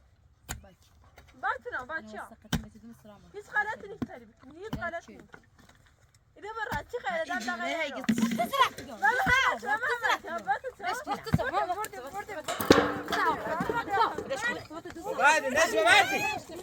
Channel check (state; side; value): identical; both; correlation 1.00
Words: باتنا بچه هیچ غلطی نیست تری بکنی هیچ غلطی نیست ایده برای چی خیلی دم دقیقه بعد الناس ببردي